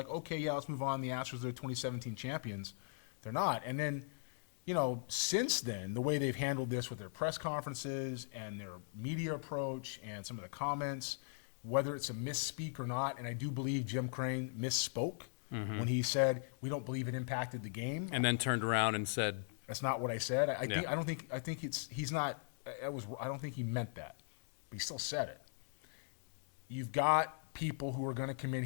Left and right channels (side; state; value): right; silent; digital silence